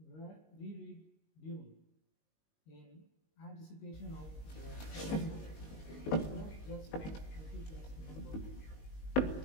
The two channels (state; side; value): late; right; 19 ms